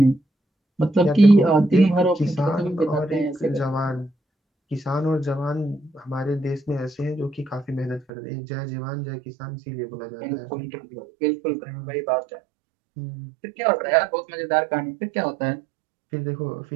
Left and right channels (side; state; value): left; drops out; at 8.1 s